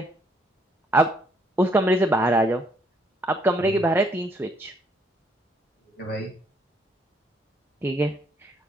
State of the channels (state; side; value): normal; both; correlation 0.69